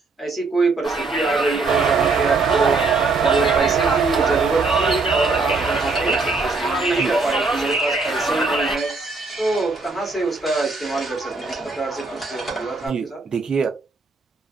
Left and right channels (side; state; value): left; quieter; 3.9 dB